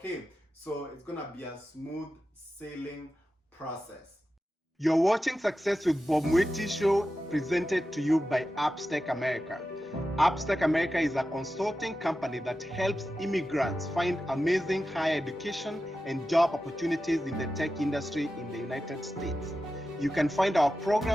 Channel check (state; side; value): normal; both; correlation 0.92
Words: so it's gonna be a smooth sailing process. You're watching Success with Bob Mwiti show, presented to you by Appstech America. Appstech America is a consulting company that helps immigrants find amazing higher education and job opportunities in the tech industry in the United States. You can find our